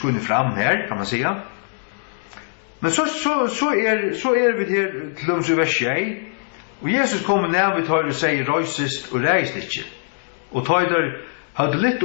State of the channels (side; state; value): right; silent; digital silence